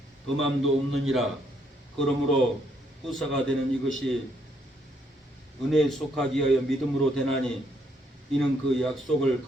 범함도 없느니라. 그러므로 후사가 되는 이것이 은혜에 속하기 위하여 믿음으로 되나니 이는 그 약속을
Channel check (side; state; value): both; normal; correlation 0.72